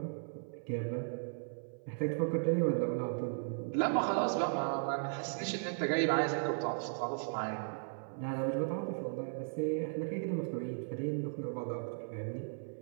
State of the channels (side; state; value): left; silent; 54 dB below the other